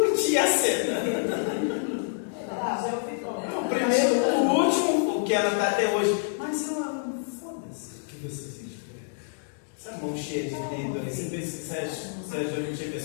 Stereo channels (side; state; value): right; silent; digital silence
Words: a cena. O primeiro, o último, o que ela está até hoje. Mas eu amo, foda-se. O que você sente por ela? Essa mão cheia de dedo aí, você já não teve a